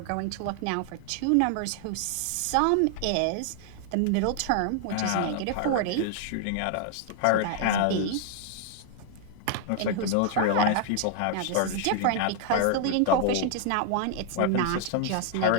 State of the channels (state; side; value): different; both; correlation 0.00